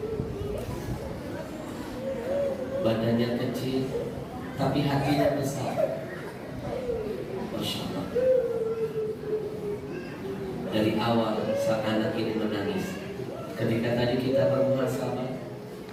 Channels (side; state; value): both; identical; correlation 1.00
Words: kecil, tapi hatinya besar. Masya Allah. Dari awal saat anak ini menangis, ketika tadi kita bermuhasabah,